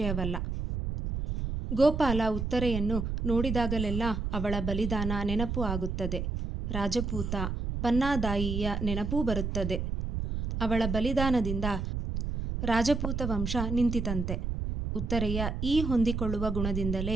ಗೋಪಾಲ ಉತ್ತರೆಯನ್ನು ನೋಡಿದಾಗಲೆಲ್ಲ ಅವಳ ಬಲಿದಾನ ನೆನಪು ಆಗುತ್ತದೆ. ರಾಜಪೂತ ಪನ್ನಾದಾಯಿಯ ನೆನಪೂ ಬರುತ್ತದೆ. ಅವಳ ಬಲಿದಾನದಿಂದ ರಾಜಪೂತ ವಂಶ ನಿಂತಿತಂತೆ. ಉತ್ತರೆಯ ಈ ಹೊಂದಿಕೊಳ್ಳುವ ಗುಣದಿಂದಲೇ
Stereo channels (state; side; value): noise; right; rumble, 3 dB below the sound